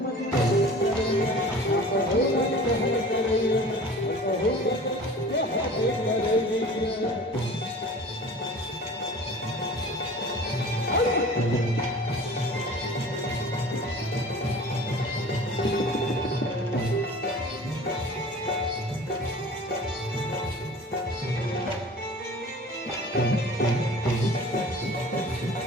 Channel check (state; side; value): normal; both; correlation 0.42